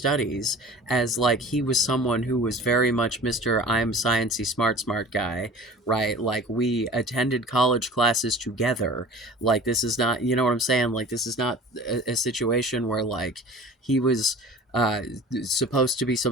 as like he was someone who was very much Mr. I'm sciencey smart guy, right? Like, we attended college classes together. Like, this is not, you know what I'm saying? Like, this is not a situation where like he was uh supposed to be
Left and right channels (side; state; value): both; normal; correlation 0.41